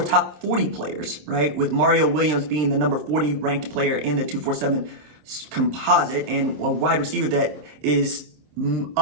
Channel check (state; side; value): late; left; 26 ms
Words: top 40 players, right? With Mario Williams being the number 40 ranked player in the 247 composite, and a wide receiver that is